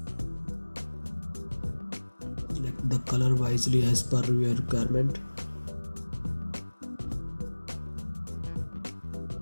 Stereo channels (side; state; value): both; inverted; correlation -1.00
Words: Select the color wisely as per your requirement.